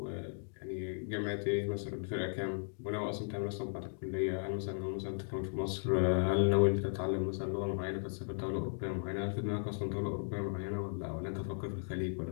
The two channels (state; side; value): silent; right; digital silence